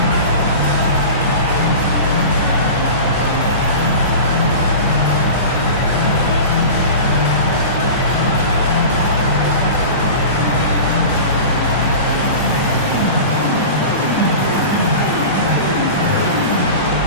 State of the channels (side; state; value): both; inverted; correlation -0.34